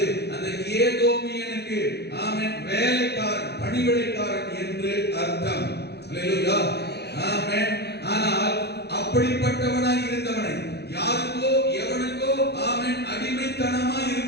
அந்த ஏதோமியனுக்கு, ஆமென், வேலைக்காரன், பணிவிடைக்காரன் என்று அர்த்தம். அல்லேலூயா, ஆமென். ஆனால் அப்படிப்பட்டவனாய் இருந்தவனை, யாருக்கோ எவனுக்கோ, ஆமென், அடிமைத்தனமாய்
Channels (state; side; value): late; right; 0.48 ms